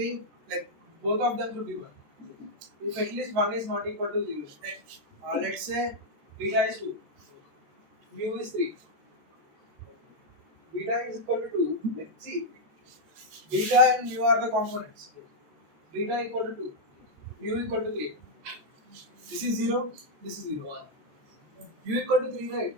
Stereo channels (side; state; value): left; late; 14 ms